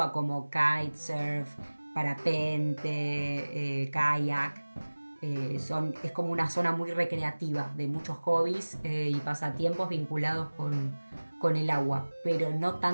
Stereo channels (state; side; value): inverted; both; correlation -1.00